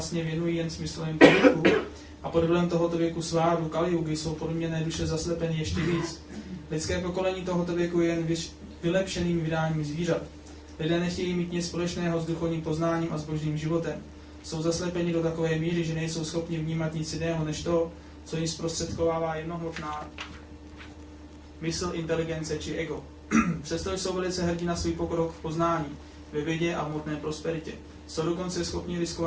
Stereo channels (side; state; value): both; identical; correlation 1.00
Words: věnují jen smyslovým pohybu a pod vlivem tohoto věku sváru Kaliugy jsou podměněné duše zaslepeny ještě víc. Lidské pokolení tohoto věku je jen vylepšeným vydáním zvířat. Lidé nechtějí mít nic společného s duchovním poznáním a s božím životem. Jsou zaslepeni do takové míry, že nejsou schopni vnímat nic jiného než to, co jim zprostředkovává jednohmotná mysl, inteligence či ego. Přesto jsou velice hrdí na svůj pokrok v poznání, ve vědě a v hmotné prosperitě. Jsou dokonce schopni